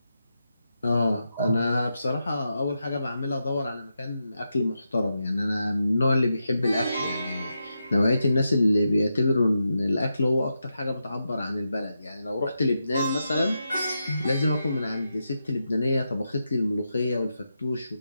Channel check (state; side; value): inverted; both; correlation -0.86